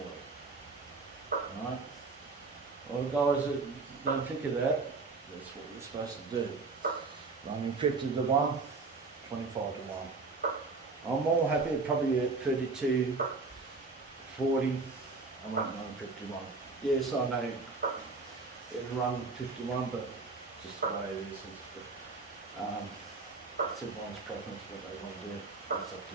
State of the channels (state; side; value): quieter; left; 4.0 dB